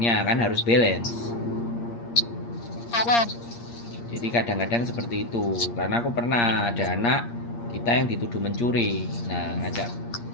kan harus balance. Jadi kadang-kadang seperti itu. Karena aku pernah ada anak kita yang dituduh mencuri. Nah,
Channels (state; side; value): late; right; 8.6 ms